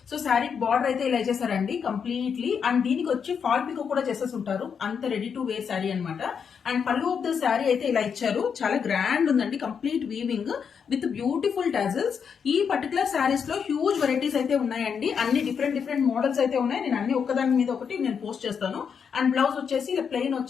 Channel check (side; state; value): right; quieter; 6.8 dB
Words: సో సారీ బార్డర్ అయితే ఇలా చేశారండి కంప్లీట్లీ, అండ్ దీనికి వచ్చి ఫాల్ పికో కూడా చేసేసి ఉంటారు, అంత రెడీ టు వేర్ సారీ అనమాట. అండ్ పళ్ళు ఆఫ్ ద సారీ అయితే ఇలా ఇచ్చారు, చాలా గ్రాండ్ ఉందండి, complete weaving with beautiful tassels. ఈ పర్టికులర్ సారీస్ లో హ్యూజ్ వెరైటీస్ అయితే ఉన్నాయండి, అన్ని డిఫరెంట్ మోడల్స్ అయితే ఉన్నాయి. నేను అన్ని ఒక్కదాని మీద ఒకటి నేను పోస్ట్ చేస్తాను. అండ్ బ్లౌజ్ వచ్చేసి ఇలా ప్లెయిన్